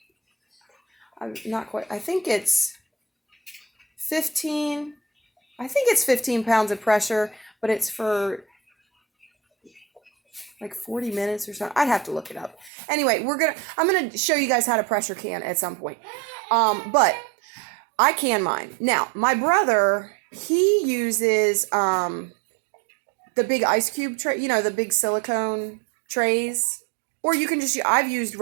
it's 15 pounds of pressure, but it's for like 40 minutes or something. I'd have to look it up. Anyway, I'm going to show you guys how to pressure can at some point. But I can mine. Now, my brother, he uses the big ice cube tray, you know, the big silicone trays. Or you can just, I've used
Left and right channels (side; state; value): left; drops out; at 12.7 s